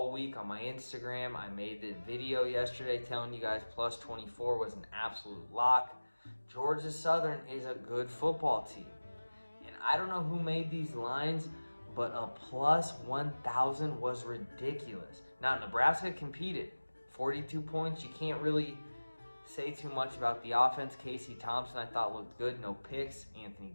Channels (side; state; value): both; inverted; correlation -1.00